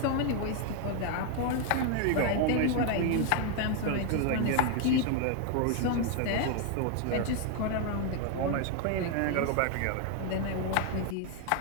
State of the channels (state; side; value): different; both; correlation 0.01